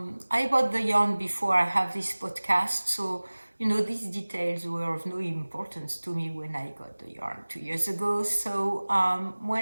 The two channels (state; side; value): inverted; both; correlation -1.00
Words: bought the yarn before I have this podcast, so you know, these details were of no importance to me when I got the yarn 2 years ago. So